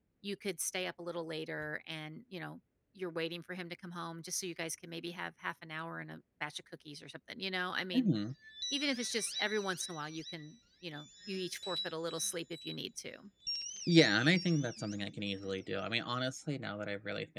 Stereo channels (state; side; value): identical; both; correlation 1.00